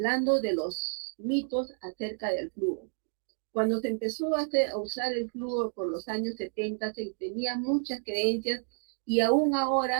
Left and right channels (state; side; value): silent; left; 58 dB below the other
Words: de los mitos acerca del flúor. Cuando se empezó a usar el flúor por los años 70, se tenía muchas creencias y aún